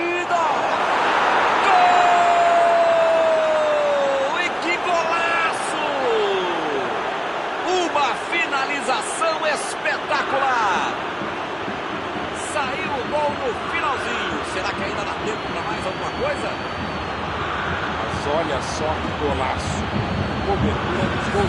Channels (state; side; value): identical; both; correlation 1.00